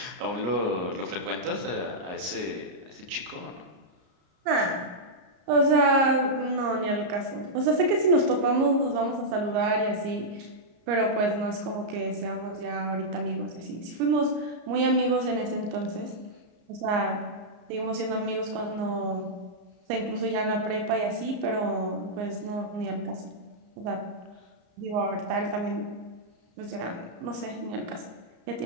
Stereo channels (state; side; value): late; left; 34 ms